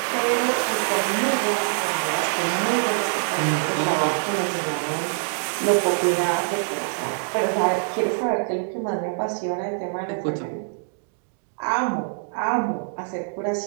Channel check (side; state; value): left; silent; digital silence